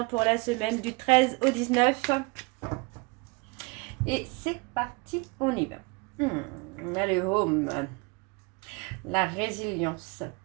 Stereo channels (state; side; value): quieter; left; 28.5 dB